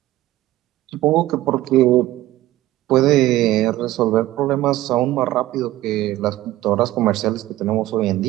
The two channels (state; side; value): quieter; left; 15.7 dB